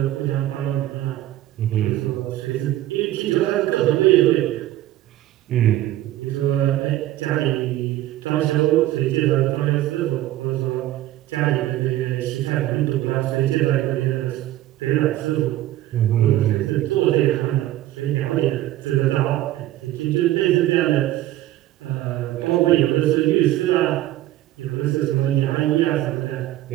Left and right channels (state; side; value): quieter; left; 14.5 dB